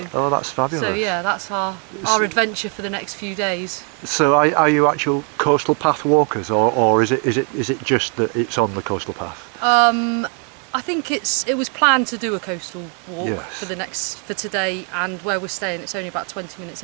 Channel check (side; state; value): left; quieter; 39.3 dB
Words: Oh, that's fabulous. so yeah, that's our adventure for the next few days. So are you actual coastal path walkers, or is it just that it's on the coastal path? I think it was planned to do a coastal walk Yes. for today, and where we're staying it's only about 20 minutes